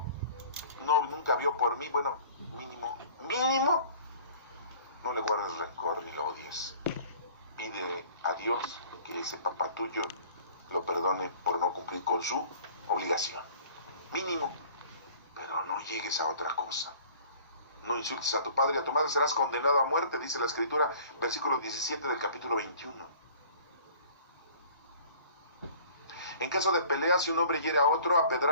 nunca vio por mí. Bueno, mínimo, no le guardes rencor ni lo odies. Pide a Dios que ese papá tuyo lo perdone por no cumplir con su obligación. Mínimo. Pero no llegues a otra cosa. No insultes a tu padre y a tu madre, serás condenado a muerte, dice la Escritura, versículo 17 del capítulo 21. En caso de pelea, si un hombre hiere a otro a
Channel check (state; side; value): inverted; both; correlation -0.49